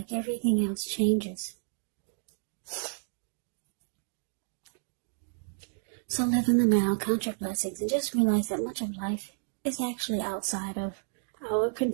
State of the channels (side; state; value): left; silent; 57 dB below the other